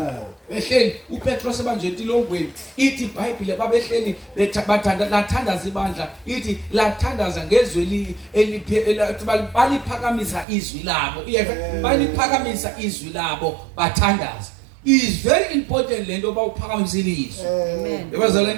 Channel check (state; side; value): drops out; left; at 10.5 s